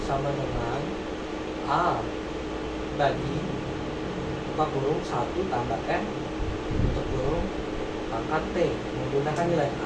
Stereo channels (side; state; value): both; identical; correlation 1.00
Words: sama dengan A bagi buka kurung 1 tambah N tutup kurung pangkat T, menggunakan nilai